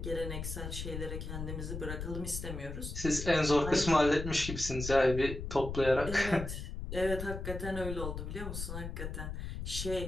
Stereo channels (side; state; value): left; noise; rumble, 6 dB below the sound